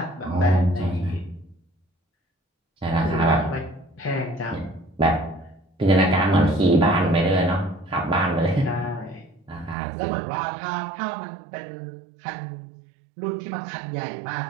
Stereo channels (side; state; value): left; drops out; at 9.8 s